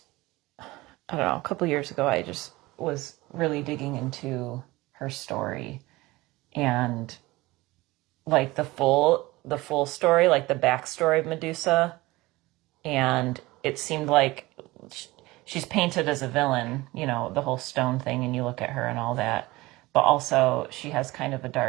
know, a couple years ago, I just was really digging into her story and like the full story, like the backstory of Medusa. And it seemed like she's painted as a villain, you know, the whole stone thing, and you look at her and all that. But also she has kind of a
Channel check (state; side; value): quieter; left; 20.3 dB